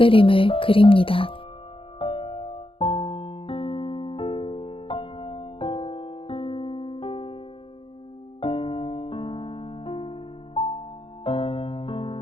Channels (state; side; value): late; right; 0.26 ms